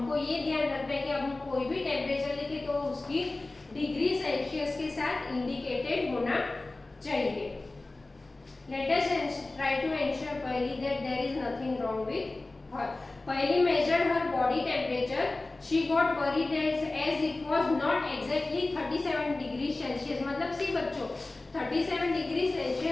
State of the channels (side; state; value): right; quieter; 3.1 dB